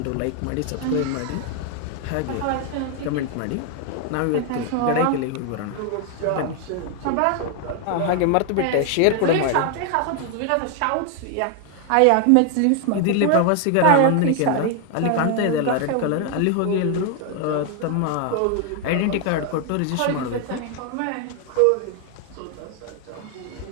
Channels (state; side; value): different; both; correlation 0.00